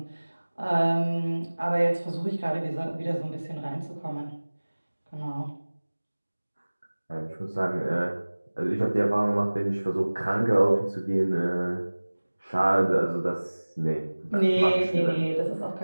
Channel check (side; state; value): both; inverted; correlation -1.00